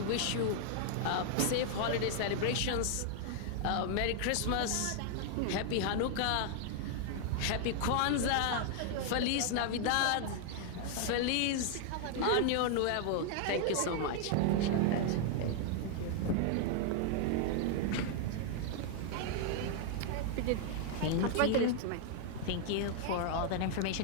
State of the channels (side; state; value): both; different; correlation 0.00